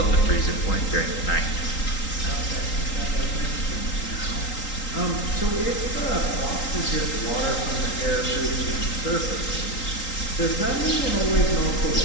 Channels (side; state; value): right; late; 3.8 ms